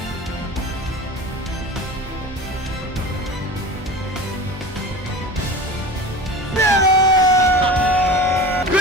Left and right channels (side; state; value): both; normal; correlation 0.34